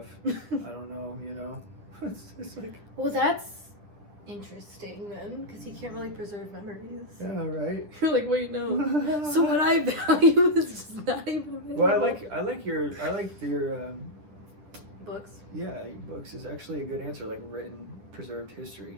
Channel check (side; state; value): left; late; 9.9 ms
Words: I don't know, you know. It's like. Well, that's interesting then, because you can't really preserve memories. Yeah, right. You're like, wait, no. So what I value is just not even available. Well, I like your books. Yeah, books is actually a good answer. Like written, preserved